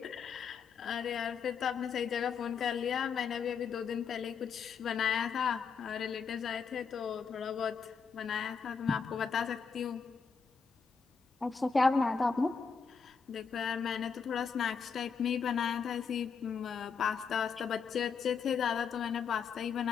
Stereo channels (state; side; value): quieter; right; 6.0 dB